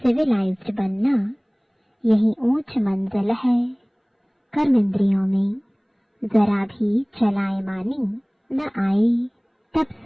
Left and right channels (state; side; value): identical; both; correlation 1.00